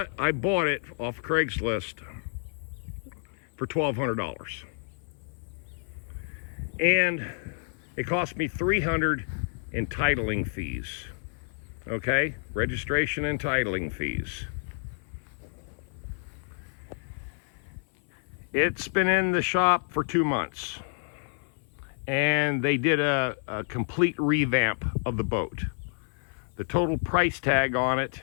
it off Craigslist for $1,200. And it cost me $300 in titling fees. Okay, registration and titling fees. It's been in the shop for 2 months, and they did a complete revamp of the boat. The total price tag on it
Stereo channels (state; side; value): silent; right; 56 dB below the other